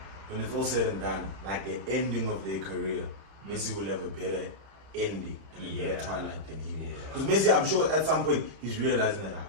when it's all said and done, like the ending of their career, Messi will have a better ending and a better twilight than he will. Because Messi, I'm sure at some point he's realizing that,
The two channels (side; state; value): left; late; 31 ms